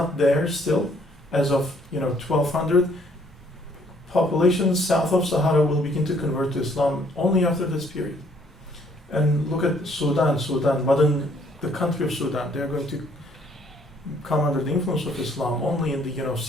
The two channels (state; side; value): normal; both; correlation 0.64